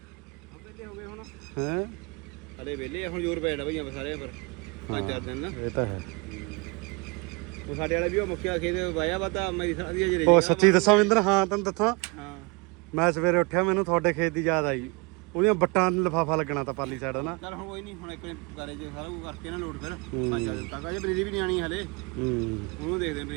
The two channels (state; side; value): quieter; left; 28.4 dB